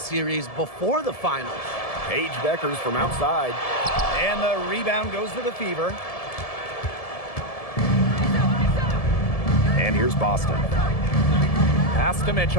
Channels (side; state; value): right; late; 1.7 ms